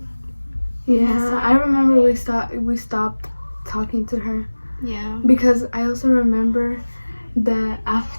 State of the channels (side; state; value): both; inverted; correlation -1.00